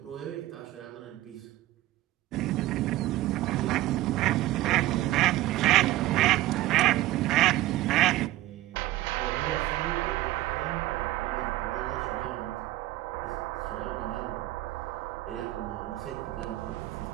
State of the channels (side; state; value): left; quieter; 16.2 dB